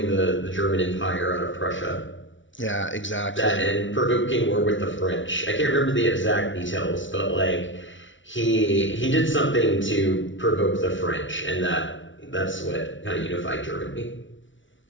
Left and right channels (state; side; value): late; right; 0.56 ms